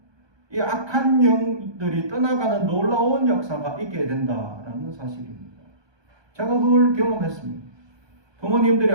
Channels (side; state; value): left; late; 1.2 ms